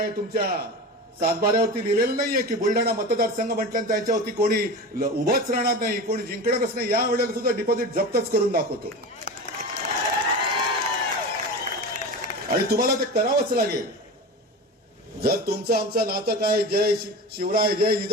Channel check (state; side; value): normal; both; correlation 0.29